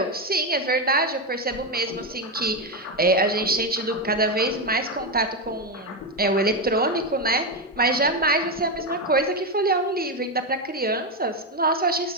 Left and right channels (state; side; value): normal; both; correlation 0.09